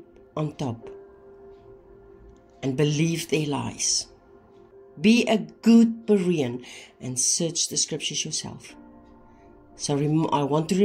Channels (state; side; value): identical; both; correlation 1.00